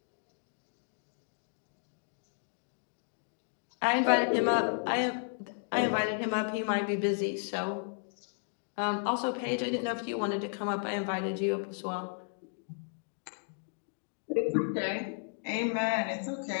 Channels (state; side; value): silent; right; digital silence